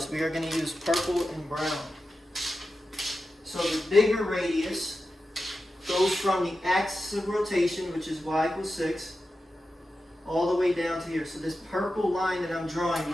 We are going to use purple and brown. So the bigger radius goes from the axis of rotation, which is y equals 6, all the way down to here. So this purple line that I'm drawing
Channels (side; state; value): both; normal; correlation 0.91